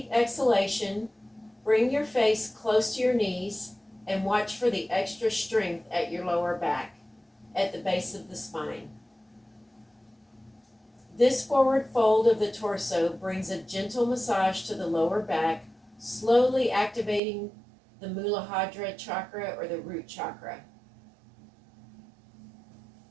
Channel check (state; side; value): drops out; left; at 17.2 s